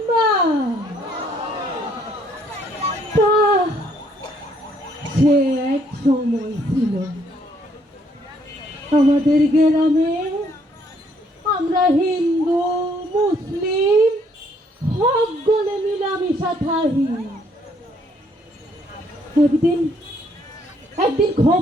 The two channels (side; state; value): both; normal; correlation 0.67